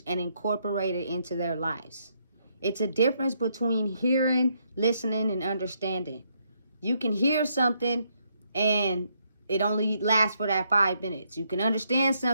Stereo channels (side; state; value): both; inverted; correlation -0.74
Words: and incorporate it into their lives. It's a difference between hearing, listening, and understanding. You can hear something and it only lasts for that 5 minutes. You can understand